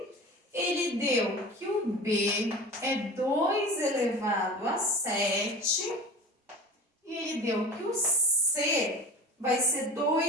Ele deu que o B é 2 elevado a 7. E ele deu que o C vai ser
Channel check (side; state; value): both; normal; correlation 0.35